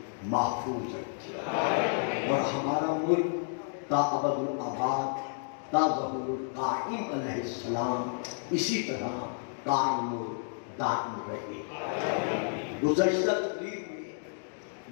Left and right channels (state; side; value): silent; right; digital silence